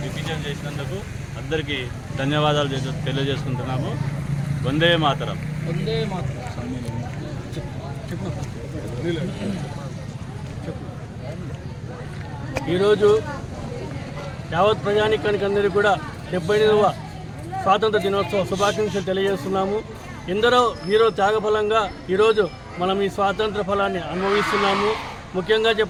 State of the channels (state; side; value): identical; both; correlation 1.00